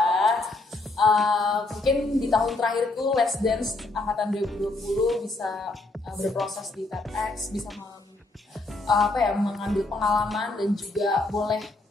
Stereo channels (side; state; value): right; quieter; 3.1 dB